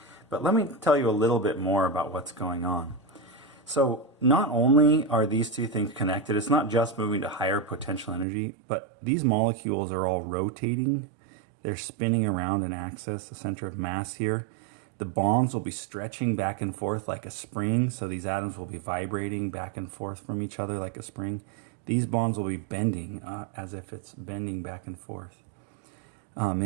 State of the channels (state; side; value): drops out; left; at 8.2 s